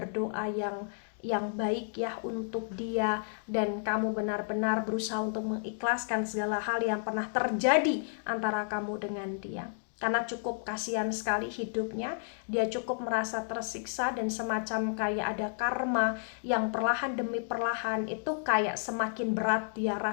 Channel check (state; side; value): silent; right; digital silence